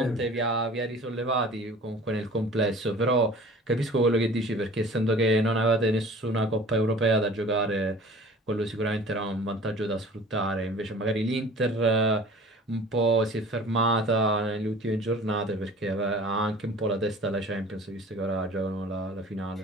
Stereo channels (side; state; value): both; normal; correlation 0.45